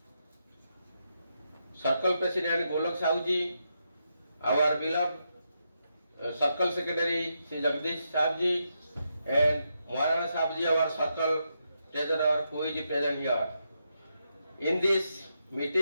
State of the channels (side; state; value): both; inverted; correlation -0.83